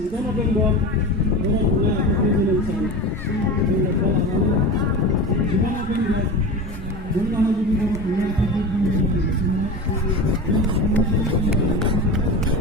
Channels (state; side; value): normal; both; correlation 0.29